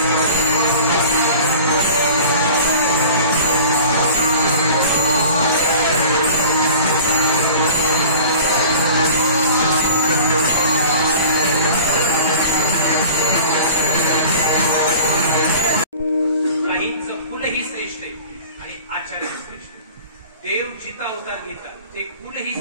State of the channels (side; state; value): both; inverted; correlation -0.42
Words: देव जिता अवतार घेतात ते कुलही